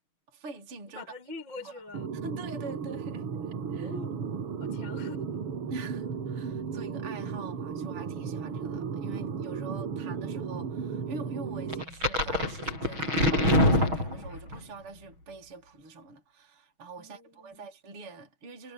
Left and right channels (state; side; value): late; left; 6.3 ms